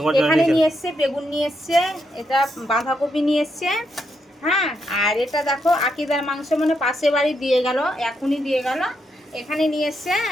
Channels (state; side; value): normal; both; correlation 0.80